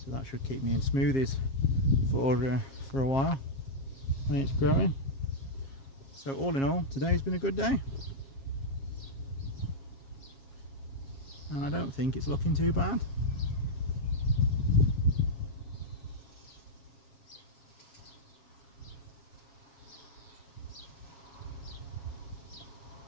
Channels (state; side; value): late; right; 7.4 ms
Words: that should keep me in smoothies for a while when it's growing. So all in all, today's been a good day. And I don't think it's looking too bad.